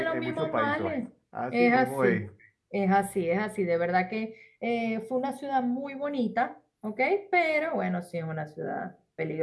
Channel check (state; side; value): identical; both; correlation 1.00